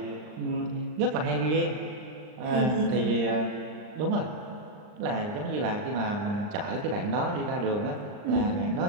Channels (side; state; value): left; late; 39 ms